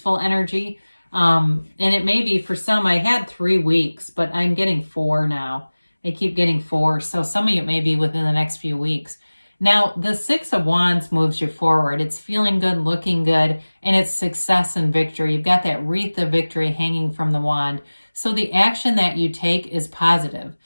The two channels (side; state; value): both; inverted; correlation -1.00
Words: energy. And it may be for some, I had 3 weeks, but I'm getting 4 now. I keep getting 4. So some of you may be within the next few weeks. Now, the 6 of Wands moves you forward. It's feeling good, looking good, and it's success and victory. You've got that wreath of victory hanging from the wand. So the action that you take is positive.